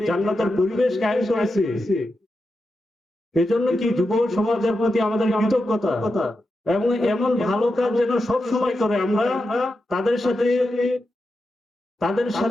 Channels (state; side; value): normal; both; correlation 0.89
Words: জান্নাতের পরিবেশ কায়েম করেছে, এজন্য কি যুব সমাজের প্রতি আমাদের কৃতজ্ঞতা, এবং এমন ভালো কাজ যেন সব সময় করে। আমরা তাদের